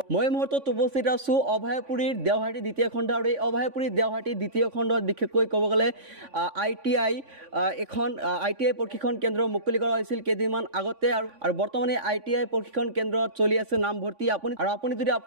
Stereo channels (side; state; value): left; late; 3.5 ms